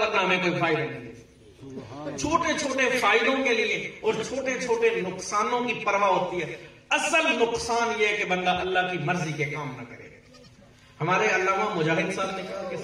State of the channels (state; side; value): identical; both; correlation 1.00